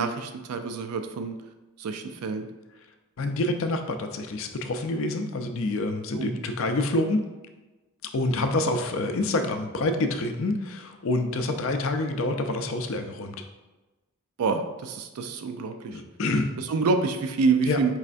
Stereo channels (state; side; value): normal; both; correlation 0.34